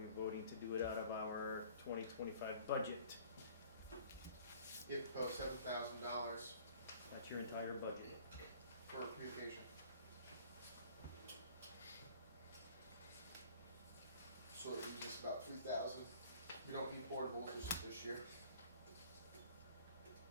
voting to do it out of our 2025 budget? You propose $7,000 That's your entire budget. for communication. So it was just about 3,000. We don't need portables this year.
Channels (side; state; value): both; inverted; correlation -0.51